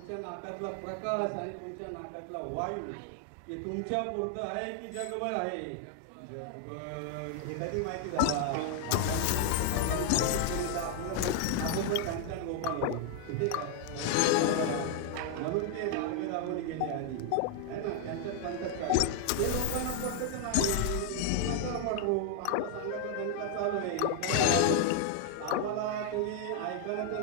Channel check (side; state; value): both; different; correlation 0.00